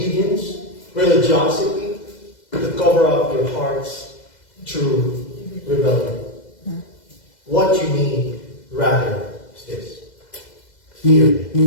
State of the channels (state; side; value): late; right; 2.0 ms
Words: religiosity, to cover up your heart's true rebellion. What you need, rather, is this. Fear